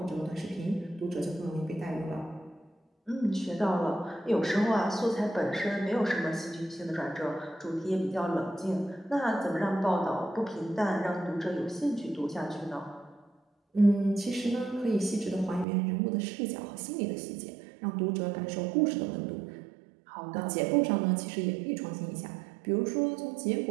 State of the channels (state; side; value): drops out; left; at 15.7 s